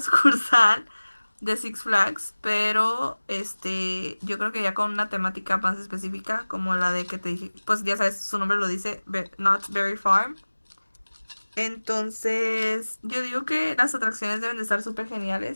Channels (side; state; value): both; inverted; correlation -1.00